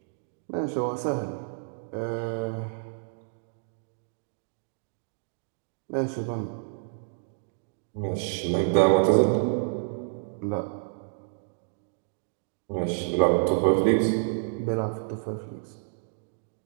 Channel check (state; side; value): silent; left; digital silence